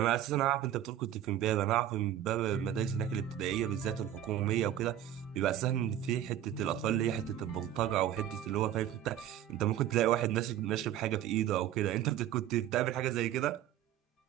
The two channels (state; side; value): quieter; left; 11.5 dB